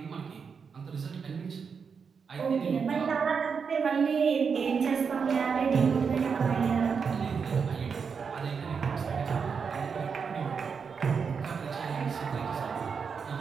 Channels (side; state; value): left; quieter; 6.0 dB